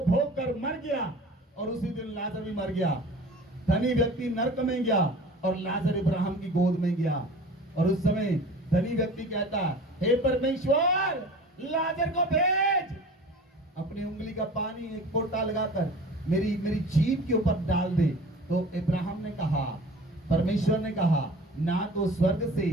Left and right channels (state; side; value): normal; both; correlation 0.42